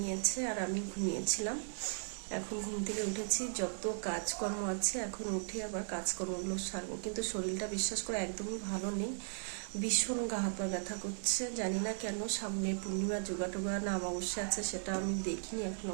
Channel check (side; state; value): left; silent; digital silence